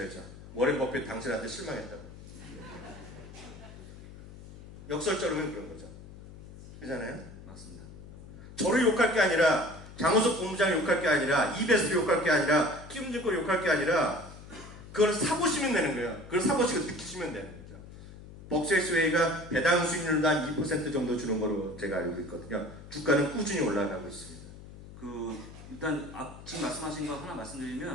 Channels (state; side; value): noise; left; hum, 16 dB below the sound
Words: 워렌 버핏 당신한테 실망했다고. 역설적으로는 그런 거죠. 그잖아요? 맞습니다. 저를 욕할 게 아니라 장호석 본부장 욕할 게 아니라 이베스트 욕할 게 아니라 키움증권 욕할 게 아니라 그걸 사보시면 되는 거예요. 그걸 사보시고 느끼시면 되는 거죠. 벅셔에스웨이가 배당 수익률도 한 2% 정도 주는 거로 제가 알고 있거든요. 주가는 꾸준히 올라가고 있습니다. 일단 지금 말씀하신 거 하나